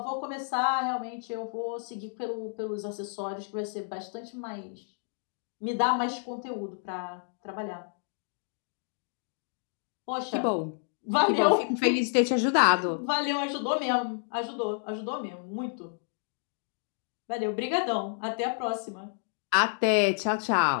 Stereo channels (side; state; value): right; silent; 57 dB below the other